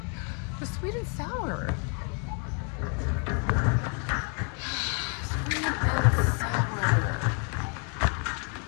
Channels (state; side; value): quieter; right; 39.1 dB